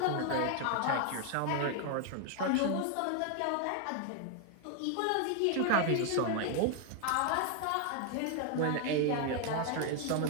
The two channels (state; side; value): different; both; correlation 0.00